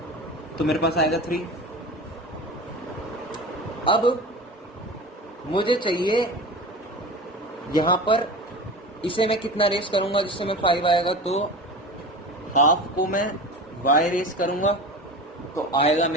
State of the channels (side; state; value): both; normal; correlation 0.32